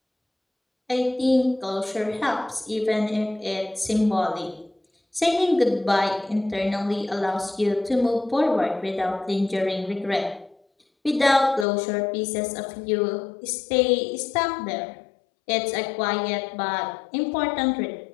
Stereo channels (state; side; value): drops out; right; at 11.7 s